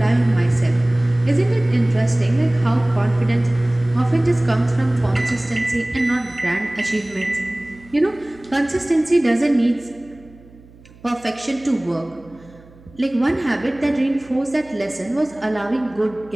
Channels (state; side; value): noise; right; hum, 24 dB below the sound